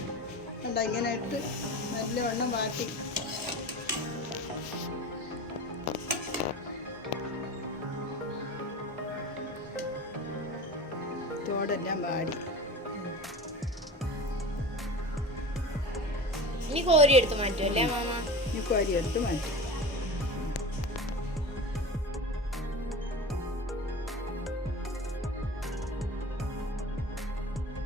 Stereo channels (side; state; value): both; normal; correlation 0.32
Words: കണ്ട, ഇങ്ങനെ ഇട്ട് നല്ലവണ്ണം വാട്ടി. തോടെല്ലാം വാടി. ഇനി കോരി എടുത്ത് മാറ്റും അല്ലേ അമ്മാമ? ഇനി കോരി എടുത്ത് മാറ്റും.